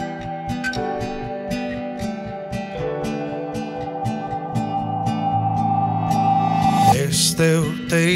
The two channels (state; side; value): identical; both; correlation 1.00